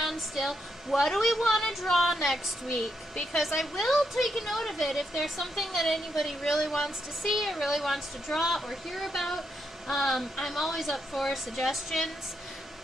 still, what do we want to draw next week? Because I will take a note of it if there's something that anybody really wants to see or really wants to draw or hear about. I'm always up for suggestions.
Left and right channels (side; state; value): both; normal; correlation 0.80